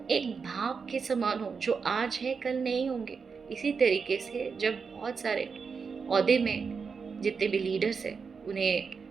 एक भाव के समान हो, जो आज है कल नहीं होंगे। इसी तरीके से जब बहुत सारे ओहदे में जितने भी लीडर्स हैं, उन्हें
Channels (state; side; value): quieter; left; 5.5 dB